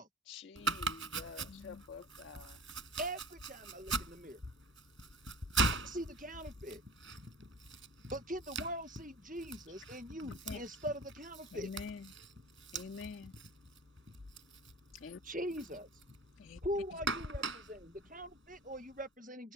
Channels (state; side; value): normal; both; correlation 0.39